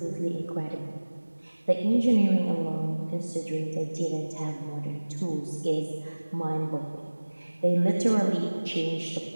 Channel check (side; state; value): both; inverted; correlation -1.00